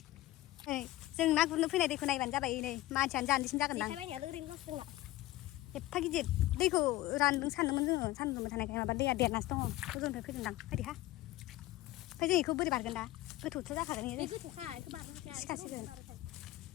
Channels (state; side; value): quieter; right; 16.7 dB